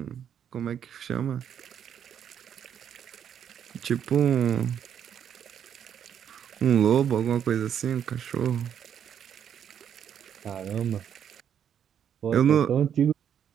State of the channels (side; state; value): left; quieter; 8.8 dB